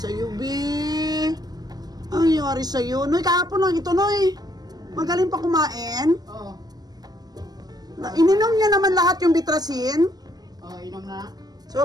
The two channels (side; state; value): left; late; 0.19 ms